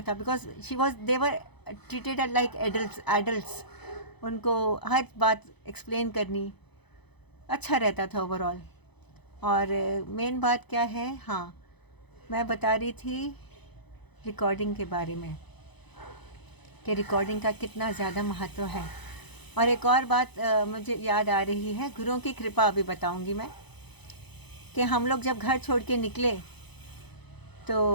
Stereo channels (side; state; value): right; late; 0.99 ms